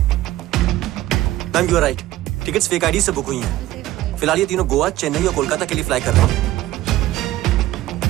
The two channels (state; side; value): quieter; left; 15.5 dB